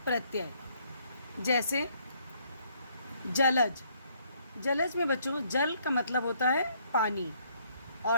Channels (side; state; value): both; inverted; correlation -0.68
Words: प्रत्यय। जैसे जलज। जलज में बच्चों जल का मतलब होता है पानी